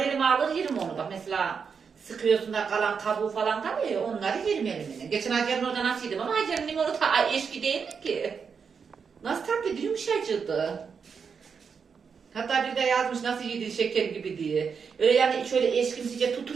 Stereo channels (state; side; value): quieter; left; 6.1 dB